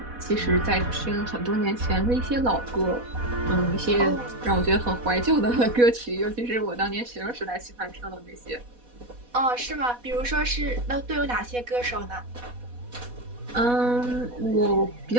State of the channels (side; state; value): left; late; 4.1 ms